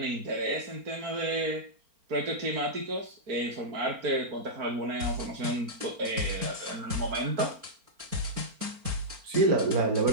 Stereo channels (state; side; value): late; left; 4.4 ms